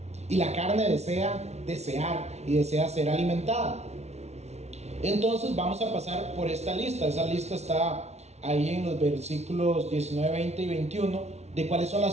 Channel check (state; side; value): late; left; 0.31 ms